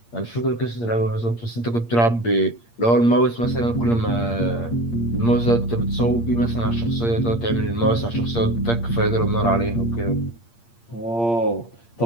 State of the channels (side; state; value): right; late; 8.6 ms